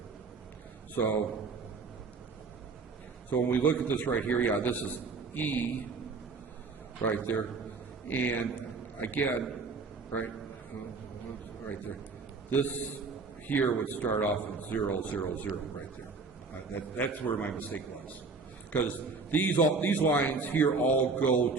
So when we look at this right here, this is E right there. And again, right, right there. This here would start off at 0, 0, 0, right there. That's where my mistake was. Because these lines here all go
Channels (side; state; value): left; quieter; 4.2 dB